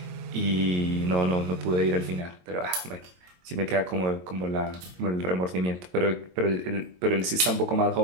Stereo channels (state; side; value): late; left; 22 ms